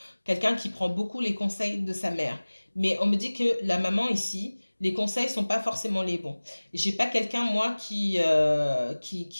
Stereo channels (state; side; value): inverted; both; correlation -1.00